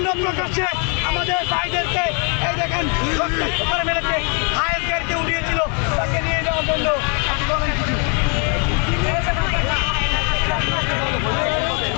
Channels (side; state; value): right; quieter; 35.1 dB